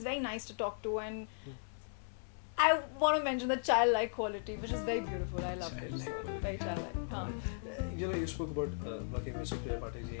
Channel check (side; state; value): right; silent; digital silence